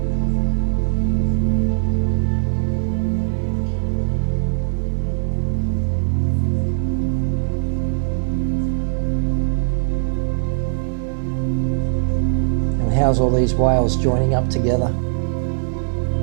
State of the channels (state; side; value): silent; left; digital silence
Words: And how's all these whales joining up together?